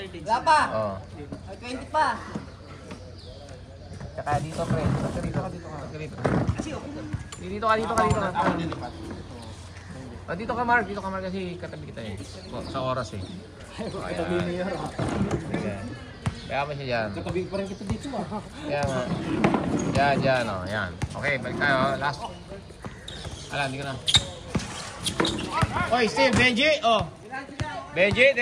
Wala pa. Oh. Ay, 20 pa. Tsaka dito, pre. Dito ka. Dito ka. Ako nilipat. Oh, dito ka, Mark. Kasi katabi kita eh. Sa oras eh. Katabi niya. Kaya mo siya dyan. Katabi pa rin kita dito ah. Kaya nga. Yan, oh. Yan. Okay, balik tayo. Last. Hindi ko na. Oy, still, Benji. Oh. Benji,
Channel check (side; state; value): both; identical; correlation 1.00